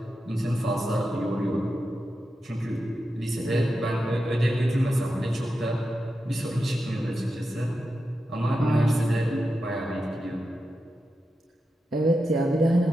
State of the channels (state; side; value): normal; both; correlation 0.89